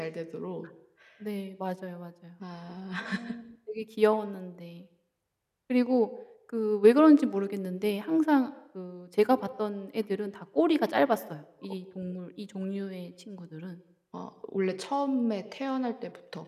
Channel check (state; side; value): identical; both; correlation 1.00